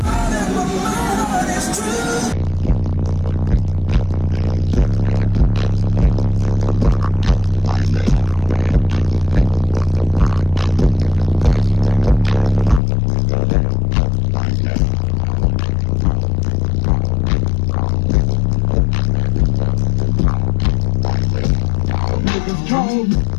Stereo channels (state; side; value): drops out; right; at 12.8 s